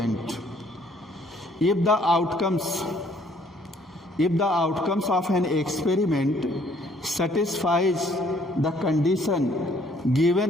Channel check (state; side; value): normal; both; correlation 0.63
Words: If the outcomes of an experiment satisfies the condition